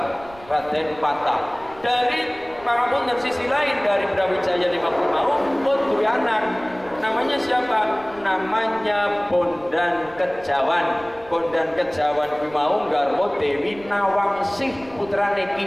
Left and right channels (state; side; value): noise; right; rumble, 22 dB below the sound